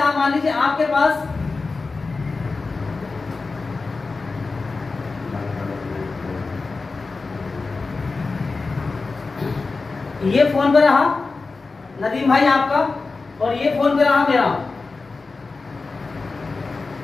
मान लीजिए आपके पास ये फोन पे रहा नदीम भाई आपका, और ये फोन पे रहा मेरा।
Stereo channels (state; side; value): quieter; right; 4.0 dB